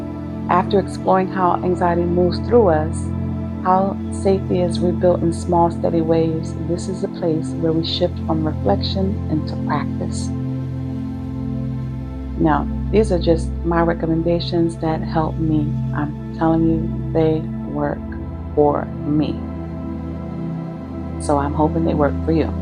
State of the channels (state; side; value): identical; both; correlation 1.00